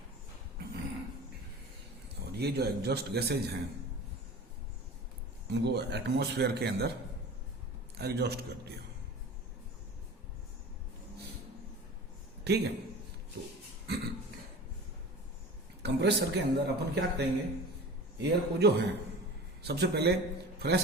और ये जो एग्जॉस्ट गैसेज हैं उनको एटमॉस्फेयर के अंदर एग्जॉस्ट कर दिया। ठीक है, तो कंप्रेसर के अंदर अपन क्या करेंगे, एयर को जो है सबसे पहले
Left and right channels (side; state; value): both; normal; correlation 0.37